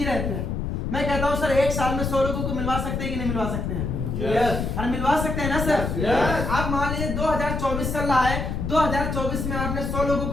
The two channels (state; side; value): noise; left; rumble, 2 dB below the sound